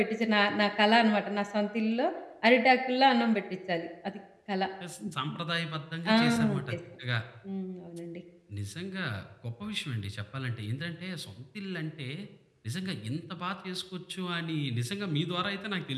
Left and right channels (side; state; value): both; identical; correlation 1.00